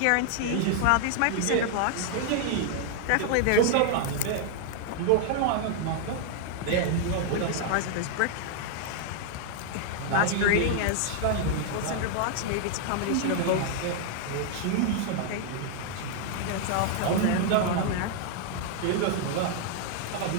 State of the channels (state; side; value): different; both; correlation 0.00